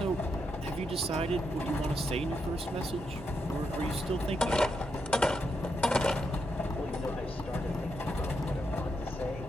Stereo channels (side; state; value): both; normal; correlation 0.82